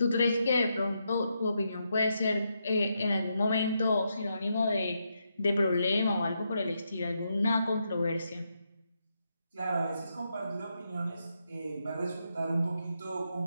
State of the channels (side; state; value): both; inverted; correlation -0.82